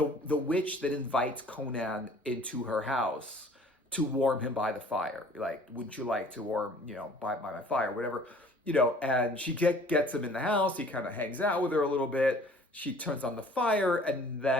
witch that invites Conan into her house to warm him by the fire. Like, wouldn't you like to warm, by my fire, whatever. And she gets him in the house. He kind of hangs out with her a little bit. She turns on the fire, and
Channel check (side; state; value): both; normal; correlation 0.52